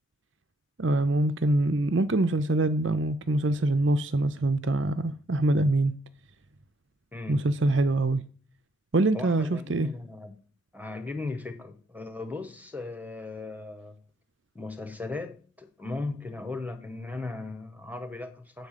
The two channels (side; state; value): both; normal; correlation 0.71